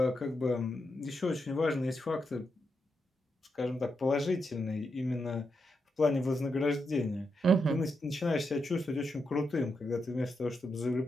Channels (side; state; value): both; normal; correlation 0.84